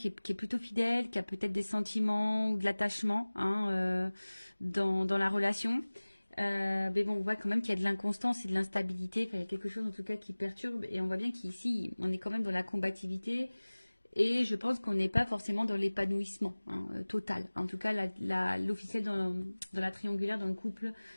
est plutôt fidèle, qui a peut-être des sentiments ou de l'attachement hein, dans la relation. Mais bon, on voit quand même qu'il y a de l'inconstance et de l'instabilité. Enfin, il y a quelque chose en tout cas qui perturbe. Et on voit bien qu'ici, on est quand même dans la combativité. Et je pense qu'on n'est pas forcément dans l'épanouissement hein, total. En tout cas, l'officiel dans la triangulaire, dans le couple,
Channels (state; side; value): inverted; both; correlation -1.00